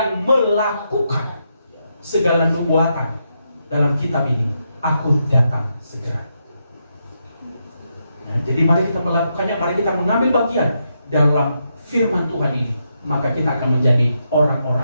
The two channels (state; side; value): inverted; both; correlation -0.82